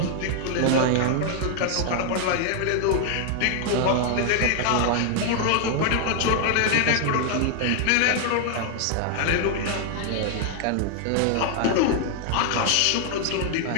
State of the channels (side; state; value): both; different; correlation 0.00